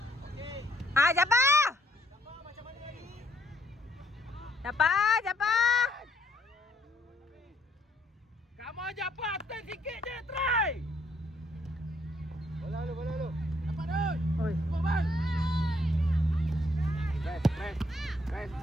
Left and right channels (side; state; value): both; normal; correlation 0.69